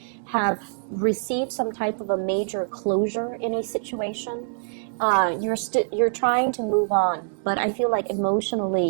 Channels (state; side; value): silent; left; 62 dB below the other